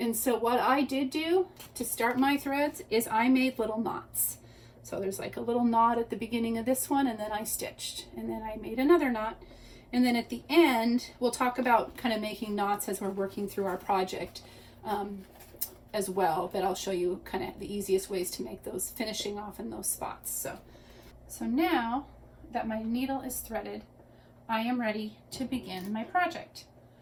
so what I did do to start my threads is I made little knots. So there's like a little knot at the beginning of this one, and then I stitched, and then I made another knot. And then at the end, we'll talk about kind of making knots as we're working through our project as well, but I'll show you kind of the easiest ways to make those, finishing off in those spots. So now that my needle is threaded, I am ready to begin my project.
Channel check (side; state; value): both; identical; correlation 1.00